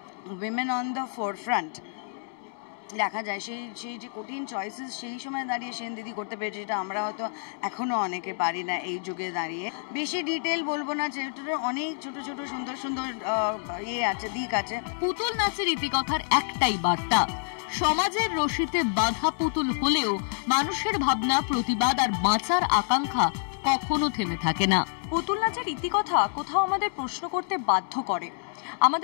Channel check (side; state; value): right; silent; digital silence